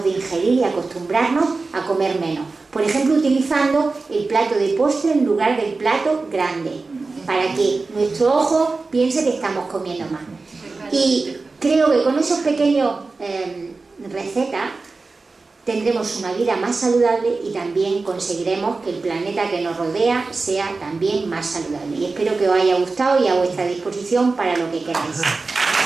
de ingerir y acostumbrarnos a comer menos. Por ejemplo, utilizando el plato de postre en lugar del plato grande, para que nuestro ojo piense que estamos comiendo más. Y creo que con esos pequeños recetas tendremos una vida más saludable y también conseguiremos que el planeta que nos rodea sea también más saludable. Y espero que os haya gustado y a vuestra disposición para lo que queráis.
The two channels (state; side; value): quieter; left; 3.9 dB